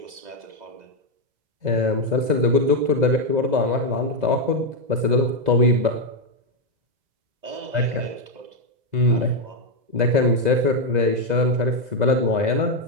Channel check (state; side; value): late; left; 2.0 ms